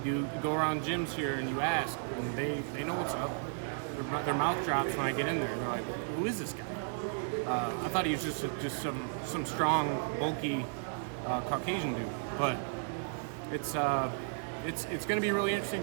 you go around gyms here and you ask, and they know what's up. Their mouth drops when I get in there. They're like, "Who is this guy?" I thought he was just some strong, bulky Caucasian dude. But it's going to be really interesting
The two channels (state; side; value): silent; left; digital silence